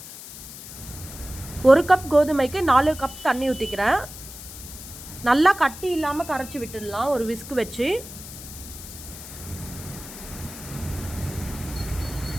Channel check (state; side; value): noise; left; hiss, 13 dB below the sound